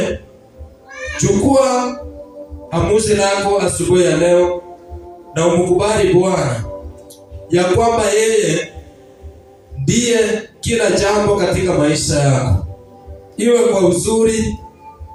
chukua amuzi lako asubuhi ya leo na umkubali Bwana ya kwamba yeye ndiye kila jambo katika maisha yako, iwe kwa uzuri,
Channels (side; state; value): both; identical; correlation 1.00